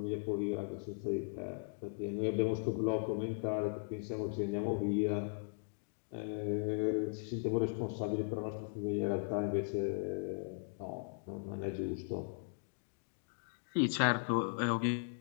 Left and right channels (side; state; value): right; silent; digital silence